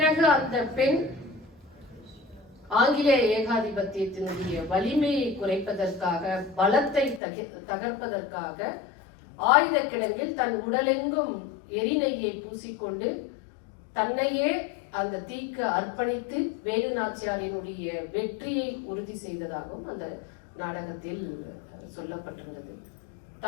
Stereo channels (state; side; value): drops out; right; at 7.2 s